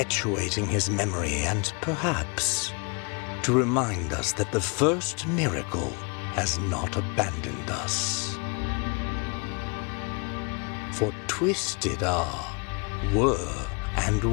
his memory and perhaps to remind us that the first miracle has not abandoned us. For twisted are, were, and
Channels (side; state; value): right; quieter; 33.0 dB